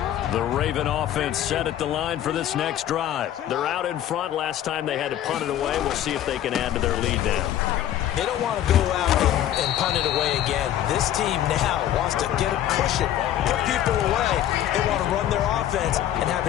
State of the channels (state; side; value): quieter; right; 11.7 dB